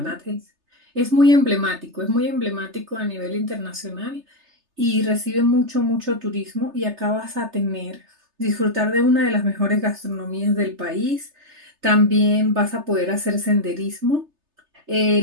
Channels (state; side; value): late; left; 3.3 ms